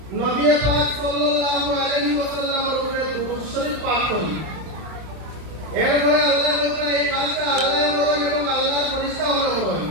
নবী পাক সাল্লাল্লাহু আলাইহি ওয়াসাল্লামের উপরে দুরূদ শরীফ পাঠ করি। এরপরে আল্লাহ বলেন এই কাজটা আল্লাহ করেন এবং আল্লাহর ফেরেশতাগণ করেন।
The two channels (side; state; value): left; late; 32 ms